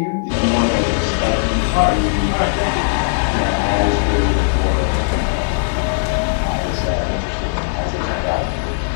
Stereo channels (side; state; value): right; silent; digital silence